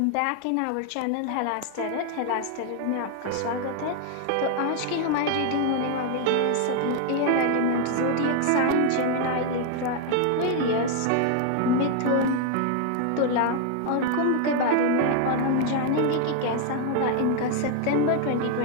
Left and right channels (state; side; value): different; both; correlation 0.00